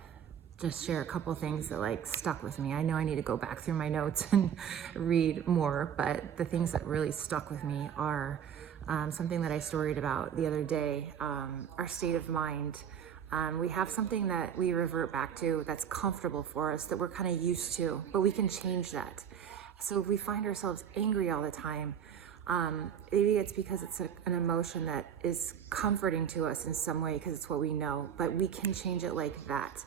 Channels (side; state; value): left; quieter; 8.6 dB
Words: just share a couple things that stuck with me. I know I need to go back through my notes and read more, but the things that really stuck with me are something that I storied about the other day, our state of mind. We have something that we revert back to that's comfortable for us, that we're kind of used to, but we can change that. So if we find ourselves angry all the time, maybe it's because it's an emotion that is comforting to us in some way because it's what we know, but we can change it like that.